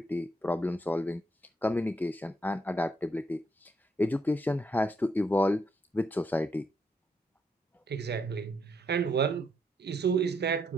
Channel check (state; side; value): normal; both; correlation 0.75